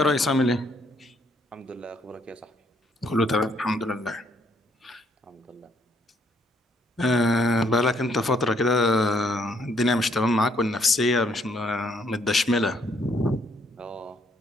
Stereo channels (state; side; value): normal; both; correlation 0.69